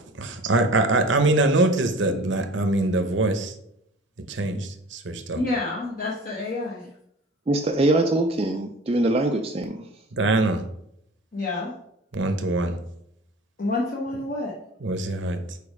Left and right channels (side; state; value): both; normal; correlation 0.41